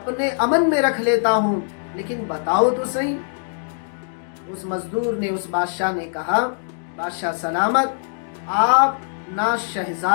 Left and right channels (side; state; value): right; silent; digital silence